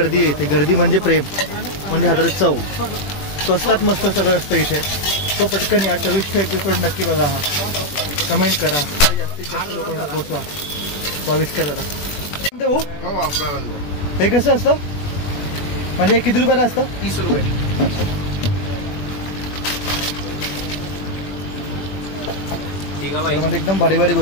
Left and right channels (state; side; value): late; right; 21 ms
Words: आहे इथे। गर्दी म्हणजे प्रेम, म्हणजे हातात चव। स्वस्तात मस्त सगळं असतं इथे। तो पटकन या 24चा एपिसोड नक्की बघा, हा कमेंट करा आणि जास्तीत जास्त लोकांना पोहोचवा। 22 करा दादा। हो हे कसं असतं म्हणजे हे किती रुपयाला असतं? 30 रुपये। म्हणजे एकदम भारी भारी